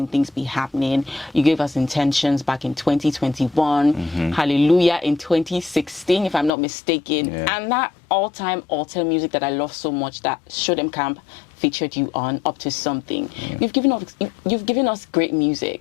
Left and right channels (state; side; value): drops out; right; at 6.5 s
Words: things be happening. You gave us Intentions back in 2021, Hallelujah in 2016, if I'm not mistaken. Yeah. And that all-time altar music that I love so much that Show Them Camp featured you on, Up to Something. Yeah. You've given us great